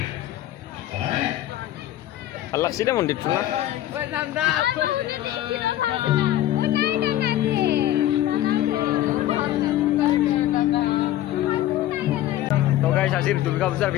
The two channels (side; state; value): right; quieter; 13.5 dB